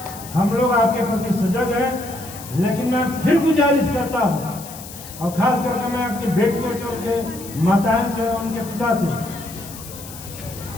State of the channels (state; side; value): noise; left; hiss, 14 dB below the sound